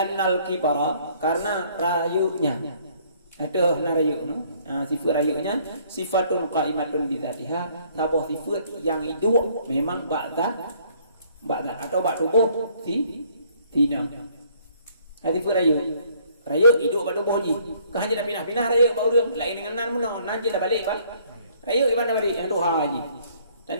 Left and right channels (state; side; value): inverted; both; correlation -0.62